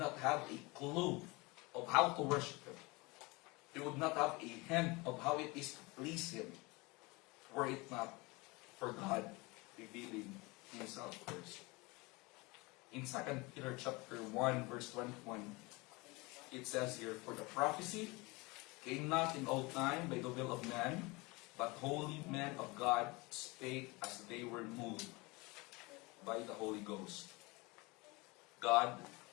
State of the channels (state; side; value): quieter; right; 25.0 dB